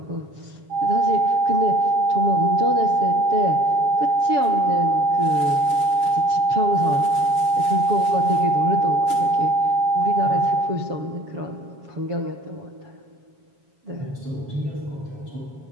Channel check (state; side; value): late; left; 7.2 ms